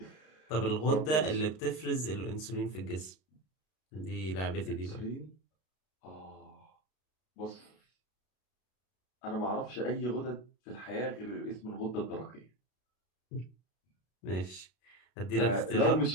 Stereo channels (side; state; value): right; late; 32 ms